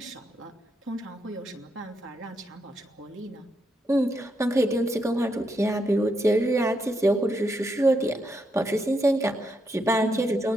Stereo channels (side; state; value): both; normal; correlation 0.81